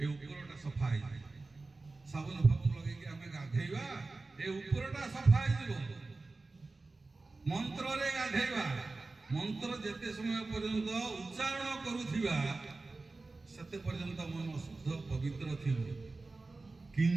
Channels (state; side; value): quieter; left; 3.5 dB